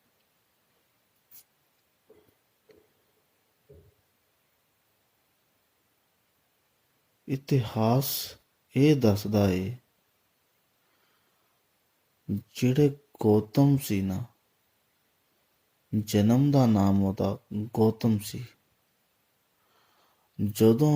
ਇਤਿਹਾਸ ਇਹ ਦੱਸਦਾ ਏ ਜਿਹੜੇ ਗੌਤਮ ਸੀ ਨਾ, ਜਨਮ ਦਾ ਨਾਮ ਉਹਦਾ ਗੌਤਮ ਸੀ। ਜਦੋਂ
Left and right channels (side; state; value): both; identical; correlation 1.00